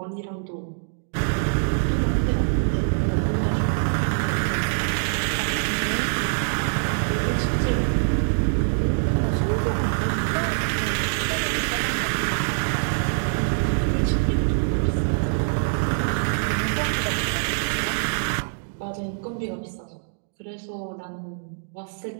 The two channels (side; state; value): left; silent; digital silence